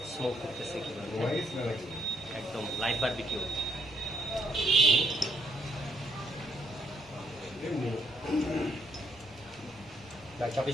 স্মোক করতেছে কিভাবে ঘুমাই গেছি না নাকি? একদম লাইট বারবিকিউ এমনি।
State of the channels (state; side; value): normal; both; correlation 0.73